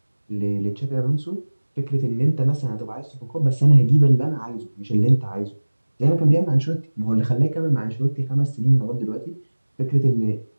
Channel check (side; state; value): both; inverted; correlation -1.00